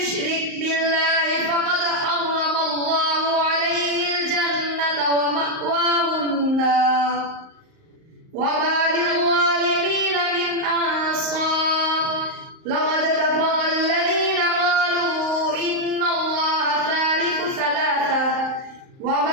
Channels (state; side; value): late; left; 38 ms